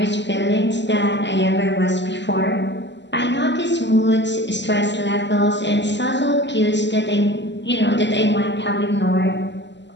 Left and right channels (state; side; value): late; right; 0.52 ms